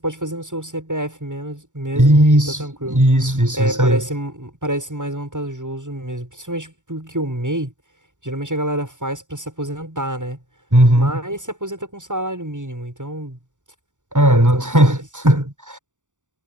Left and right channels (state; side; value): late; left; 0.86 ms